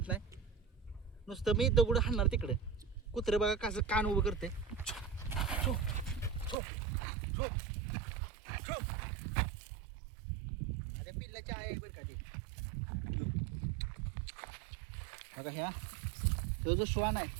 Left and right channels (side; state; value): left; drops out; at 6.6 s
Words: नाही, नुसतं मी दगड हाणणार तिकडे. कुत्रं बघा कसं कान उभं करते. छो छो छो छो. अरे पिल्लाच्या आहे बरं का ते. बघा ह्या जो श्वान आहे